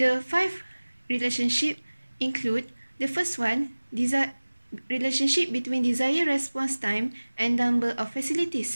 5 relationships include the first one, relationship between desired response time and number of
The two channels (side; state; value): both; inverted; correlation -1.00